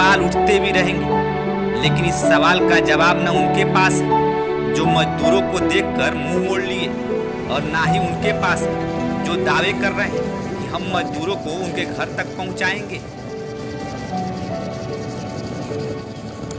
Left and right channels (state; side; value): identical; both; correlation 1.00